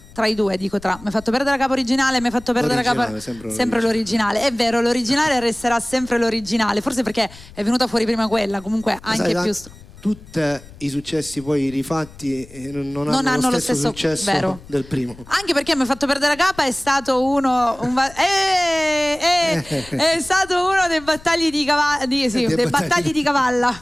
Tra i due, dico tra. Mi hai fatto perdere la capo originale, mi hai fatto perdere la capo. Sempre l'originale. È vero, l'originale resterà sempre l'originale. Forse perché è venuta fuori prima quella, comunque anche più. Tutti i successi poi rifatti non hanno lo stesso successo vero. del primo. Anche perché mi ha fatto perdere la capa è stato uno è stato uno dei battagli di cavalla dei battagli di cavalla.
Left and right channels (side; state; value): left; noise; rumble, 20 dB below the sound